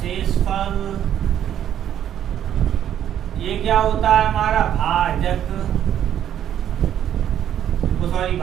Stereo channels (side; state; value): left; quieter; 10.4 dB